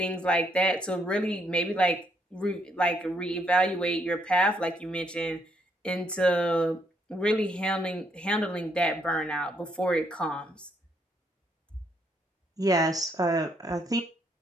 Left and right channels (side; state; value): both; normal; correlation 0.73